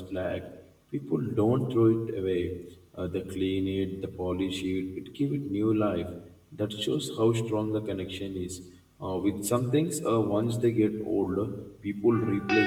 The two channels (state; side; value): identical; both; correlation 1.00